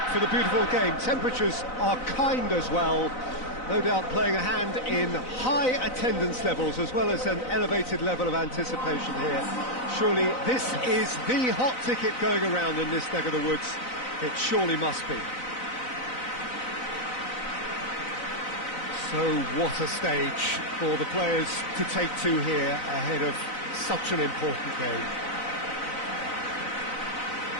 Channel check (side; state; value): right; late; 4.0 ms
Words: for the beautiful game. Temperatures are kind as well. No doubt playing a hand in high attendance levels as well as an elevated level of anticipation here. Surely this is the hot ticket going around in this neck of the woods. It surely must be. So what a stage for the players to take to here ahead of such an important game.